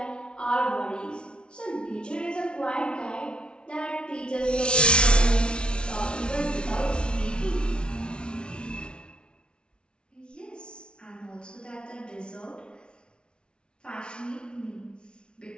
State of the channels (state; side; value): late; right; 0.057 ms